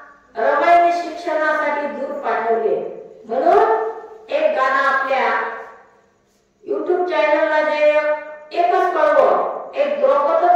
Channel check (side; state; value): both; identical; correlation 1.00